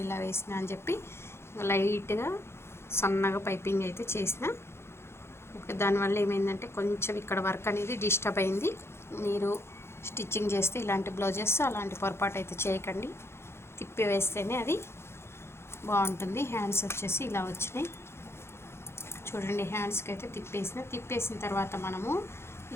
ఇలా వేసిన అని చెప్పి లైట్గా సన్నగా పైపింగ్ అయితే చేసిన. ఓకే, దానివల్ల ఏమైందంటే కొంచెం ఇక్కడ వర్క్ అనేది డిస్టర్బ్ అయింది. మీరు స్టిచ్చింగ్ చేస్తే ఇలాంటి బ్లౌజెస్ అలాంటి పొరపాటు అయితే చేయకండి. తిప్పి వేస్తేనే అది బాగుంటుంది. హ్యాండ్స్ వచ్చేసి ఇలా వచ్చినాయి చూడండి. హ్యాండ్స్కి అయితే తిప్పేసిన తర్వాత మనము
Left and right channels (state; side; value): late; right; 0.12 ms